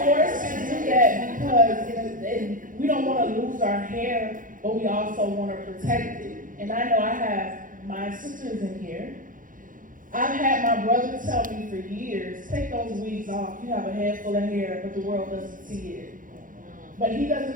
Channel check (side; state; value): left; late; 0.39 ms